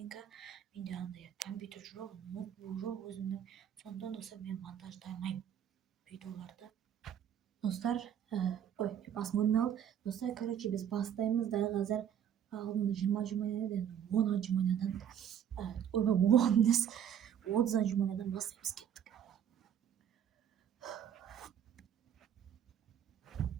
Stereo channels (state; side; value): quieter; left; 9.2 dB